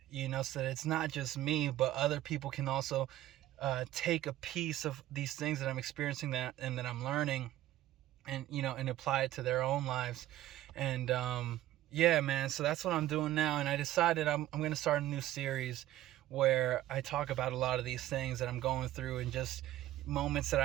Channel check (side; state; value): left; quieter; 14.4 dB